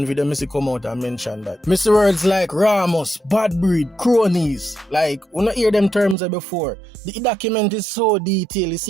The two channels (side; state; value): left; drops out; at 6.2 s